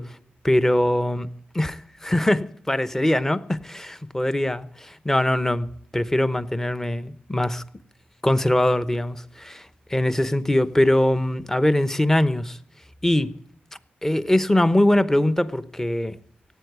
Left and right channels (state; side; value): normal; both; correlation 0.98